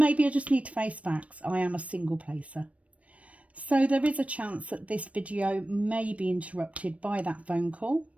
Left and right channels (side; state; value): left; late; 0.065 ms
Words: I just need to face facts. I am a single placer. So there is a chance that this video may be interrupted by that phone call.